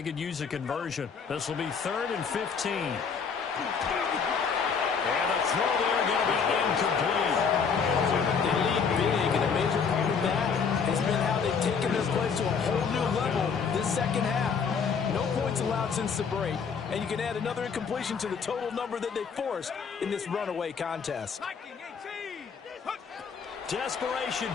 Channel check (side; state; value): right; quieter; 6.0 dB